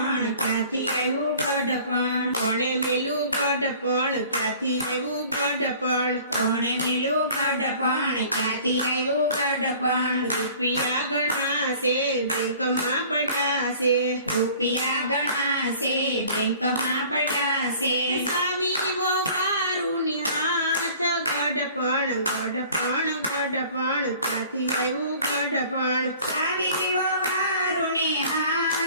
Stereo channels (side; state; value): both; inverted; correlation -0.49